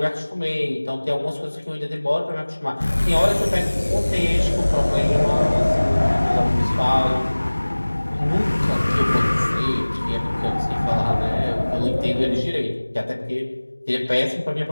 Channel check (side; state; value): both; inverted; correlation -1.00